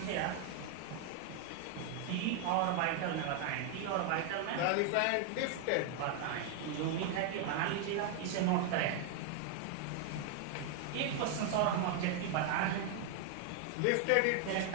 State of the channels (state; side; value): different; both; correlation 0.00